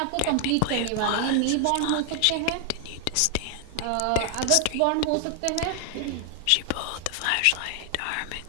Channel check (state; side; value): different; both; correlation 0.00